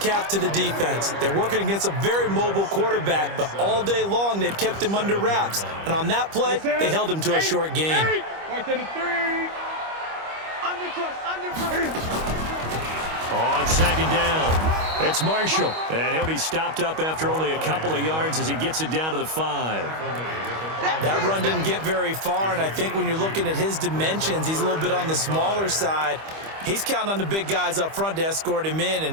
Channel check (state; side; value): late; left; 25 ms